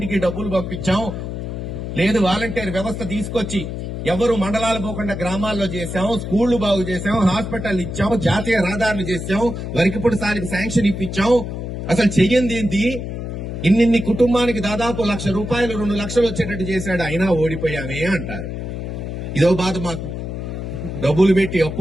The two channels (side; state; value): left; noise; hum, 6 dB below the sound